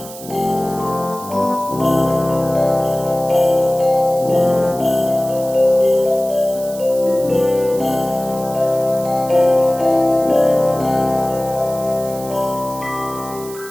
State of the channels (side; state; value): right; noise; hiss, 15 dB below the sound